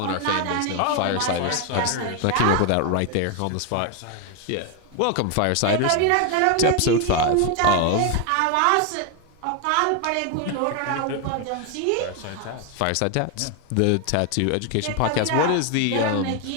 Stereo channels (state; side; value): different; both; correlation 0.01